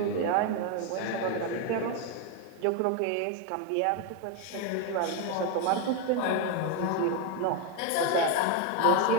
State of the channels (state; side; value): different; both; correlation 0.01